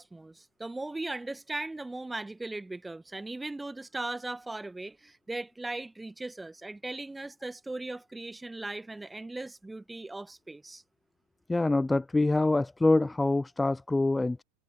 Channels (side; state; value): both; normal; correlation 0.98